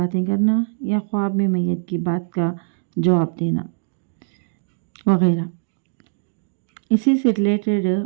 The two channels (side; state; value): left; silent; digital silence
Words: کرنا یا خواب میں میت کی بات کا جواب دینا وغیرہ، اسی سے ریلیٹڈ